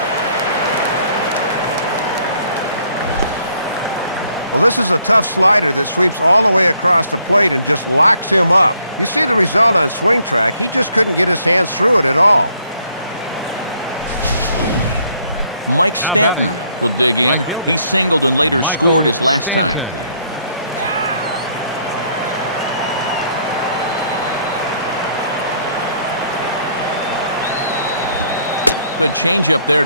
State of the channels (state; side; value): inverted; both; correlation -0.67